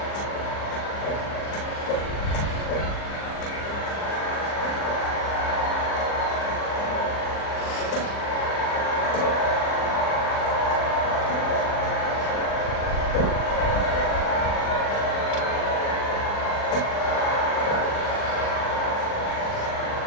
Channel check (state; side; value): late; right; 40 ms